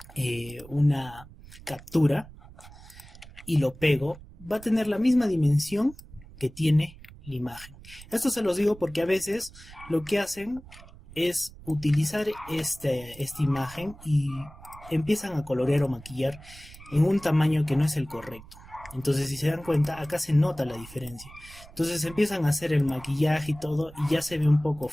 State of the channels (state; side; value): noise; right; rumble, 19 dB below the sound